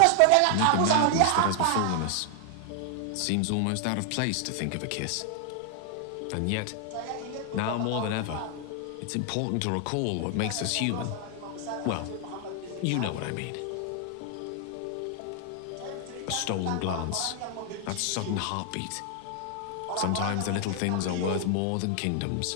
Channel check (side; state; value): both; different; correlation 0.00